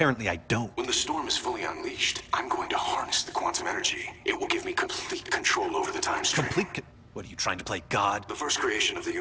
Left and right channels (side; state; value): both; identical; correlation 1.00